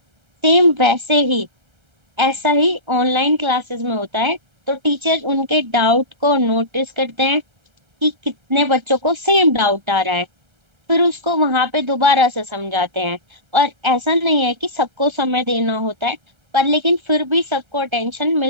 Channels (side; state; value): left; late; 1.3 ms